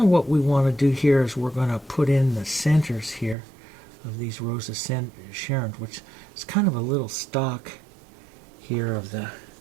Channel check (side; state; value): left; drops out; at 3.4 s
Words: what we want to do here. Is we're going to put in the centers here of these Rose of Sharon, which is kind of a little stock here of the